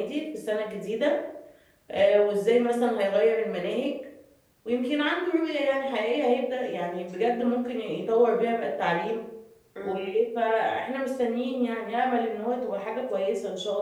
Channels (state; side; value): identical; both; correlation 1.00